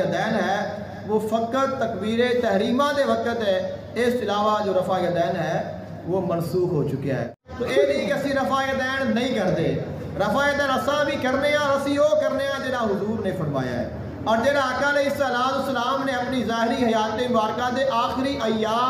ہے وہ فقط تکبیر تحریمہ دے وقت ہے، اس کے علاوہ جو رفع یدین ہے وہ منسوخ ہو چکا ہے. تو یہ نہیں کہ اسی رفع یدین نہیں کرتے، رفع یدین اساں بھی کرنے ہیں اور اسی وہ کرنے ہیں جہاں حضور نے فرمایا ہے اور جہاں آقا علیہ السلام نے اپنی ظاہری حیات مبارکہ دے آخری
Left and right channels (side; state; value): both; identical; correlation 1.00